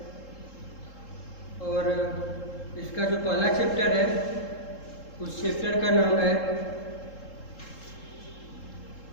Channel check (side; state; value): right; late; 3.7 ms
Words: और इसका जो पहला चैप्टर है उस चैप्टर का नाम है